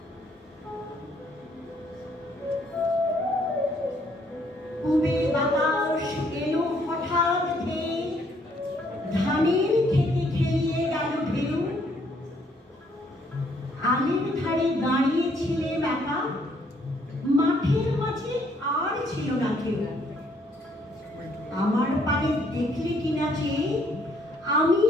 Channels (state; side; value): normal; both; correlation 0.67